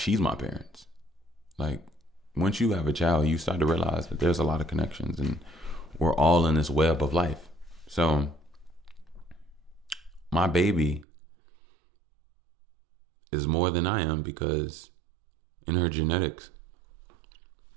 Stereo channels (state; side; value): drops out; left; at 11.1 s